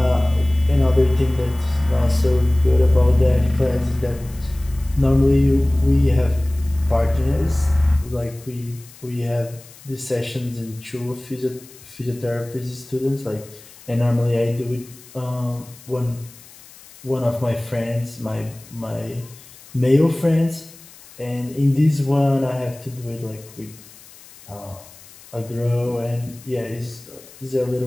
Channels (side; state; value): left; noise; hiss, 22 dB below the sound